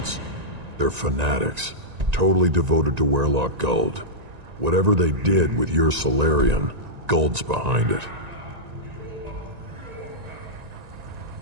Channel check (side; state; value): left; late; 1.9 ms